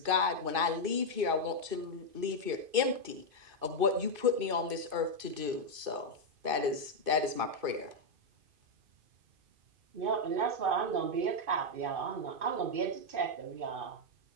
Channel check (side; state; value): left; late; 2.5 ms